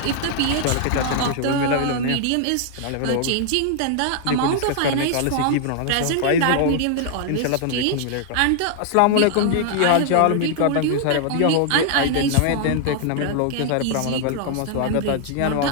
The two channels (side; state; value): both; different; correlation 0.00